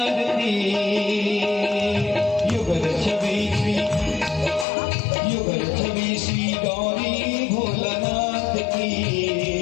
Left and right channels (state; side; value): drops out; right; at 4.7 s